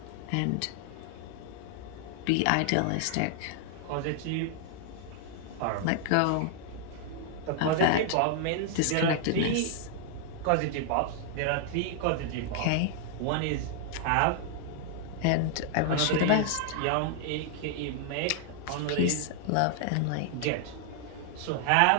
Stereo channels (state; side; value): different; both; correlation 0.00